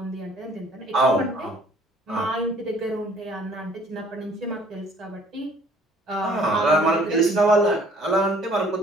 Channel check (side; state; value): both; normal; correlation 0.56